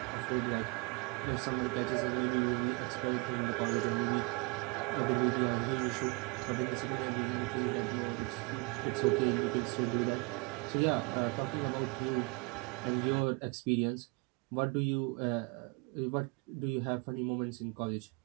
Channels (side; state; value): left; quieter; 28.1 dB